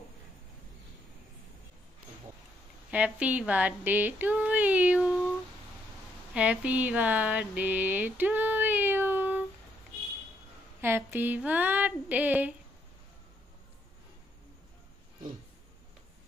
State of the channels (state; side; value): normal; both; correlation 0.74